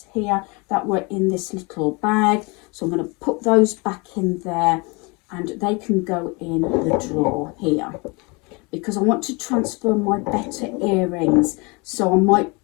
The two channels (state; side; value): quieter; right; 28.6 dB